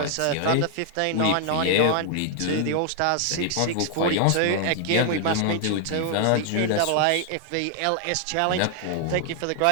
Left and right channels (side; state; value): both; different; correlation 0.00